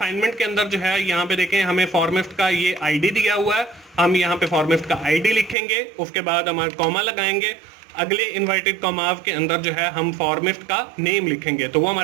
के अंदर जो है यहाँ पे देखें हमें फॉर्मिस्ट का ये आईडी दिया हुआ है, हम यहाँ पे फॉर्मिस्ट का आईडी लिखेंगे, उसके बाद हमारे कॉमा लगाएंगे, अगले इन्वर्टेड कॉमाव के अंदर जो है हम फॉर्मिस्ट का नेम लिखेंगे, तो वो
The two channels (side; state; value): left; drops out; at 5.6 s